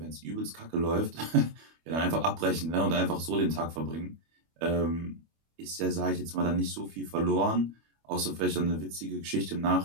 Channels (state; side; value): late; left; 25 ms